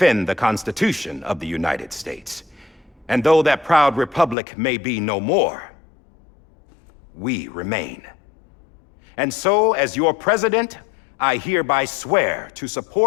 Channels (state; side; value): drops out; right; at 4.4 s